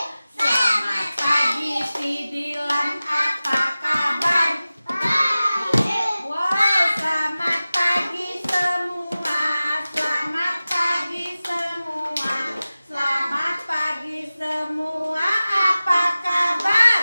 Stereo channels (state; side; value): inverted; both; correlation -0.96